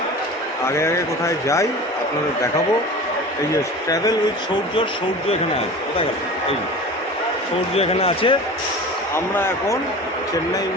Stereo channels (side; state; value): both; normal; correlation 0.36